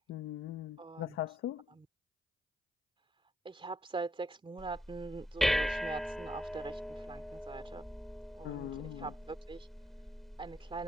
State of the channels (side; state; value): both; normal; correlation 0.76